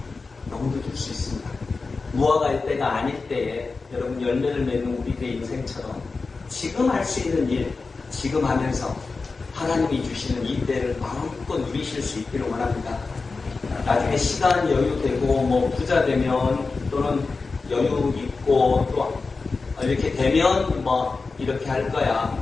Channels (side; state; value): right; quieter; 4.1 dB